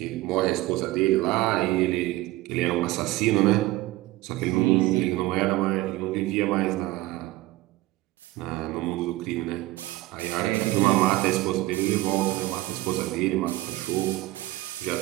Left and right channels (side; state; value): left; quieter; 18.0 dB